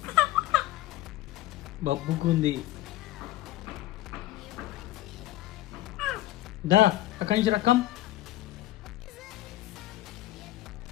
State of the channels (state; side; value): quieter; right; 15.5 dB